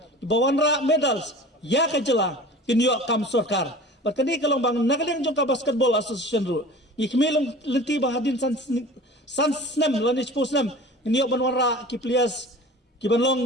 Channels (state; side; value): normal; both; correlation 0.40